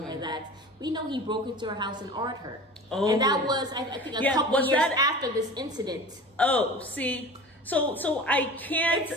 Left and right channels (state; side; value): normal; both; correlation 0.37